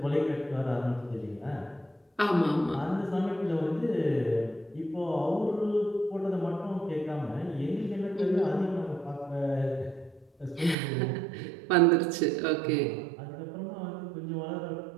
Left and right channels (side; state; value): left; drops out; at 10.8 s